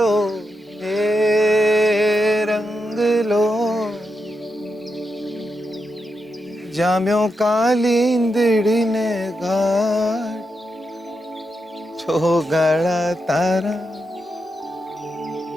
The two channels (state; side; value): normal; both; correlation 0.85